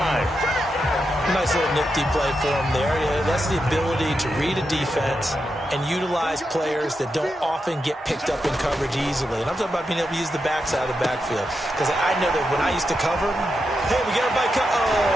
Nice little nifty play for him there. Yeah, that's the ability to read a defense and utilize players that don't often get picked up in coverage easily. And I'm talking about being able to use the backside of the backfield. Because I know that when I used to cover, hey, we got everybody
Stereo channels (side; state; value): both; normal; correlation 0.86